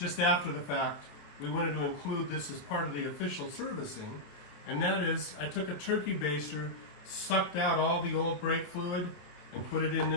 after the fact, we wanted to include this as part of the official servicing. And that is, I took a turkey baster, sucked out all the old brake fluid, and put it in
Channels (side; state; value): right; late; 27 ms